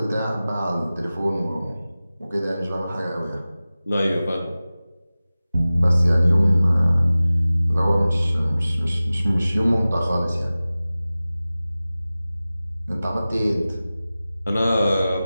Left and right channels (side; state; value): both; inverted; correlation -0.97